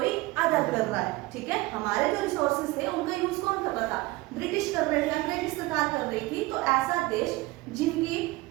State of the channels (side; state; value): left; quieter; 20.5 dB